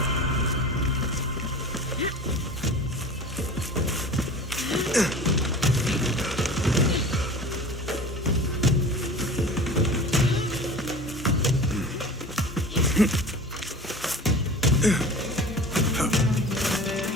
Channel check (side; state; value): both; normal; correlation 0.37